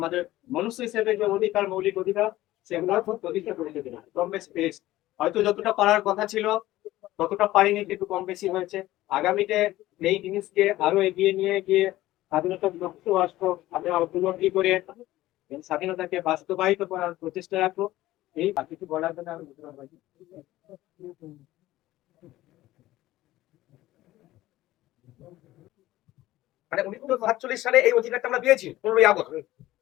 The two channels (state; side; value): quieter; right; 16.1 dB